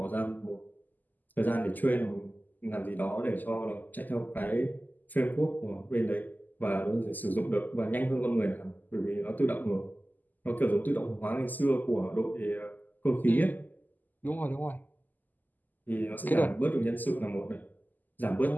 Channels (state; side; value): late; right; 0.085 ms